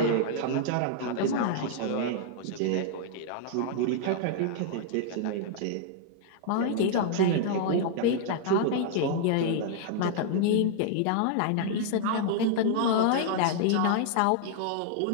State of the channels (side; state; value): both; different; correlation -0.01